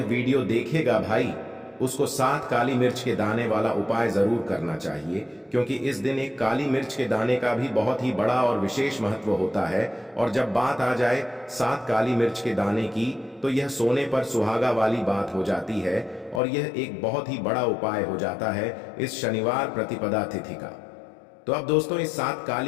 वीडियो देखेगा भाई, उसको 7 काली मिर्च के दाने वाला उपाय जरूर करना चाहिए, क्योंकि इस दिन एक काली मिर्च के दाने का भी बहुत ही बड़ा और विशेष महत्व होता है। और जब बात आ जाए 7 काली मिर्च के दाने की, तो यह सोने पर सुहागा वाली बात हो जाती है और यह एक बहुत ही बड़ा उपाय हो जाता है इस शनिवार प्रतिपदा तिथि का। तो अब दोस्तों, इस 7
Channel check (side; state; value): right; drops out; at 16.4 s